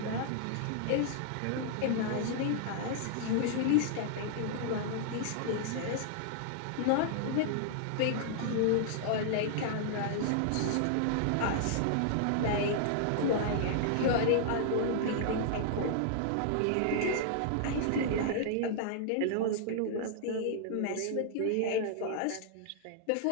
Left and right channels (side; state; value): both; different; correlation -0.01